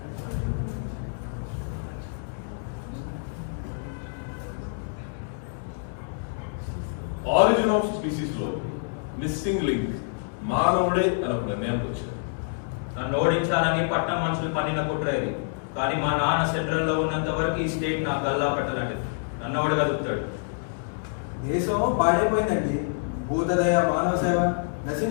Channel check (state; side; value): silent; right; digital silence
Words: Origin of species లో మిస్సింగ్ లింక్ మానవుడే అని ఒక నిర్ణయానికి వచ్చారు. నన్ను ఓడించాలని పట్నం మనుషులు పన్నిన కుట్ర ఇది. కానీ మా నాన్న సెంట్రల్లో ఉన్నంత వరకు ఈ స్టేట్ నాకు గల్లా పెట్టలాంటిది. నన్ను ఎవడు కదుపుతాడు? దేశం పాడైపోయిందండి. భూతదయ, మానవ సేవ